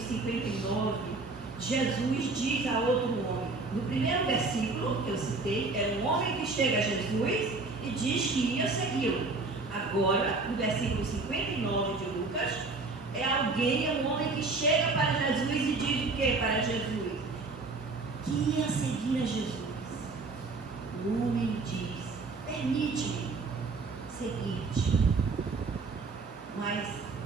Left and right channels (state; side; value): quieter; left; 3.7 dB